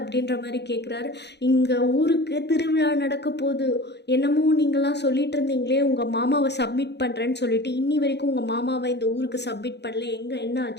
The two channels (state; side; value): late; right; 0.49 ms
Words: மாதிரி கேட்குறாரு. இங்கே ஊருக்கு திருவிழா நடக்க போகுது, என்னமோ நீங்களாம் சொல்லிட்டு இருந்தீங்களே உங்கள் மாமாவை சப்மிட் பண்ணுறேன்னு சொல்லிட்டு இன்னி வரைக்கும் உங்கள் மாமாவை இந்த ஊருக்கு சப்மிட் பண்ணல, எங்கே என்ன